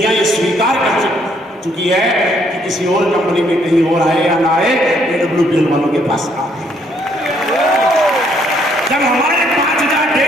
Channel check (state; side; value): normal; both; correlation 0.68